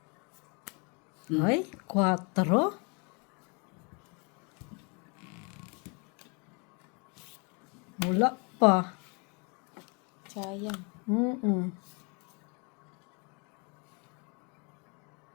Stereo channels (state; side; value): quieter; right; 33.7 dB